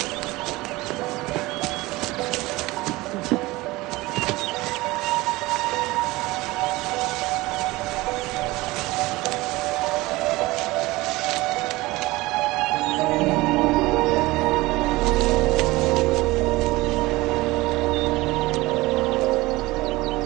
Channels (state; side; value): quieter; left; 20.5 dB